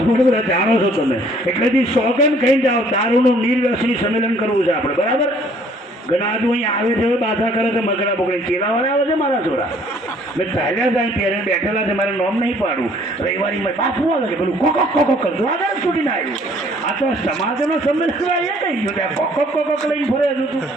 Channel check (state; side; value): normal; both; correlation 0.59